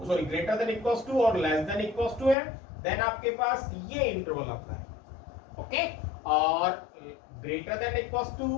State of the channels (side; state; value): right; drops out; at 2.4 s